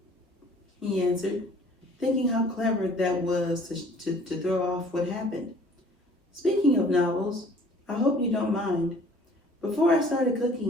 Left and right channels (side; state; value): both; normal; correlation 0.53